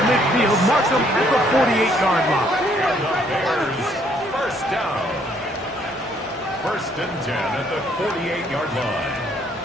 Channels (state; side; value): normal; both; correlation 0.66